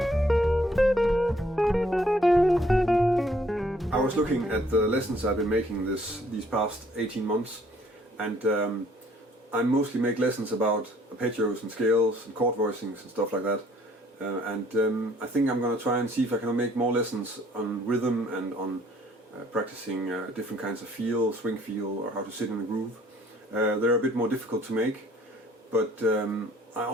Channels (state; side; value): normal; both; correlation 0.61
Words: I was looking at the lessons I've been making these past 18 months, and I mostly make lessons about arpeggios and scales and chord voicings and stuff like that. I think I'm going to try and see if I can make more lessons on rhythm and on practicing different kinds of feel, swing feel, or how to sit in a groove. They're a bit more difficult to make, but I